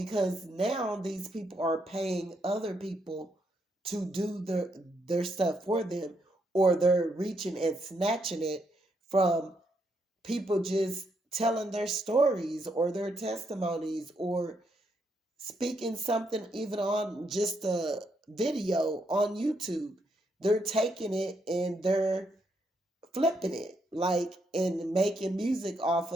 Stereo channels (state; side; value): normal; both; correlation 0.77